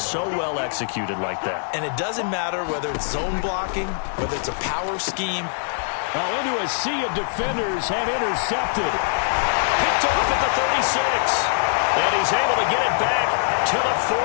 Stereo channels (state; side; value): silent; right; 64 dB below the other